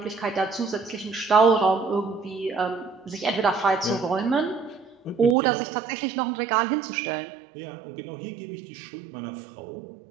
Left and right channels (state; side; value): drops out; left; at 5.4 s